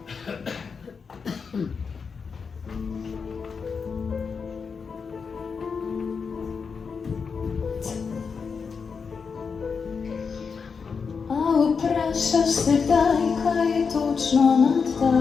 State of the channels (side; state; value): right; quieter; 5.6 dB